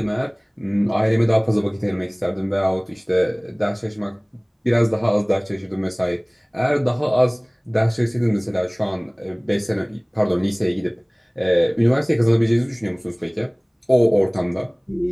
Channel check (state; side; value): identical; both; correlation 1.00